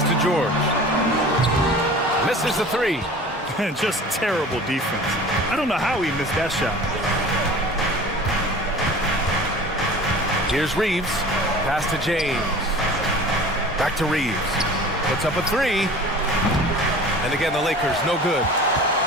to George. Misses the three. Just terrible defense. I don't know how he missed that shot. Here's Reeves. Pass to James. Back to Reeves. Puts up a three. And again, the Lakers, no good.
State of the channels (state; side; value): normal; both; correlation 0.41